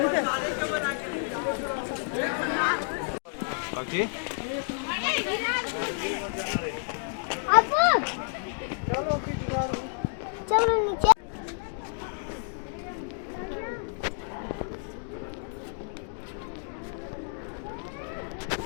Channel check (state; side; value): silent; right; 55 dB below the other